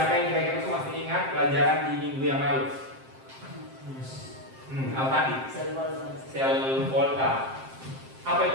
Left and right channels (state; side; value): late; left; 7.6 ms